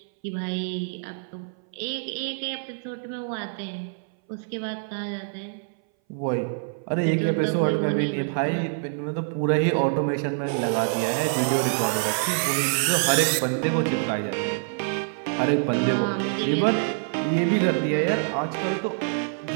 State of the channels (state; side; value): silent; left; 59 dB below the other